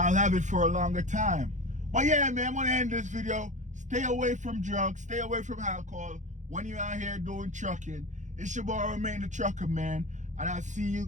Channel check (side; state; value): left; late; 0.35 ms